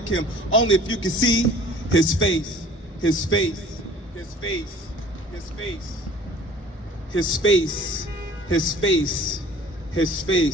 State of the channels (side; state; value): both; normal; correlation 0.49